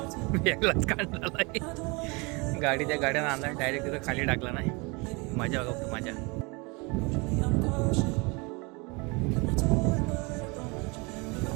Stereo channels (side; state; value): left; quieter; 28.3 dB